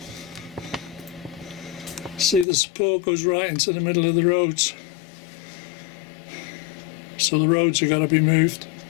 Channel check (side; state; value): right; drops out; at 2.5 s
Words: See, the support goes right into the middle of the roads. So the roads have got to be moved.